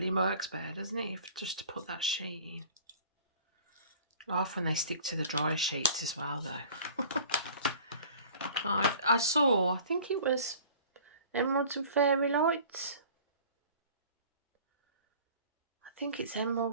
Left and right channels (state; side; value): inverted; both; correlation -0.46